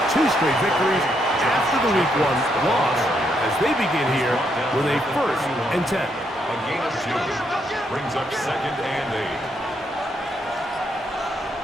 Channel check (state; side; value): normal; both; correlation 0.76